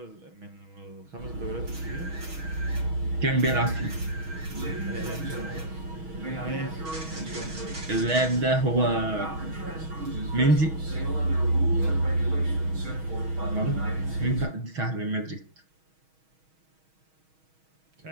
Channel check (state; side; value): late; left; 6.3 ms